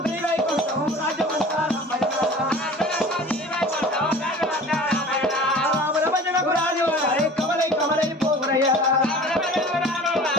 శ్రీవైకుంఠం రాజమంతారం రామర భజనకు రాజు కమలై కమలై పోగురయ్యా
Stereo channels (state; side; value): normal; both; correlation 0.42